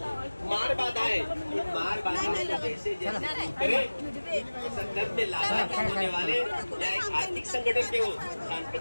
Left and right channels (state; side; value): inverted; both; correlation -1.00